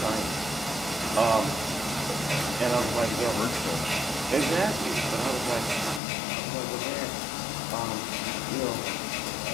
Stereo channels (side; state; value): right; drops out; at 6.0 s